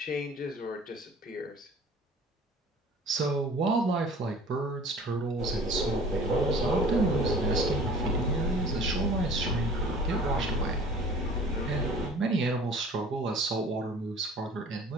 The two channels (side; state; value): both; normal; correlation 0.47